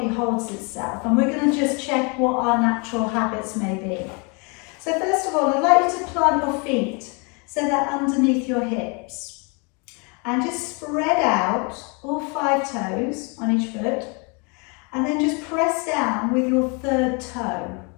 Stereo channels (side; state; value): right; quieter; 32.8 dB